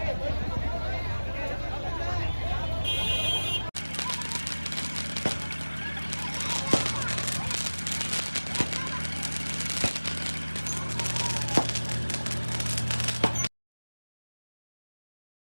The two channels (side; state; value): both; inverted; correlation -1.00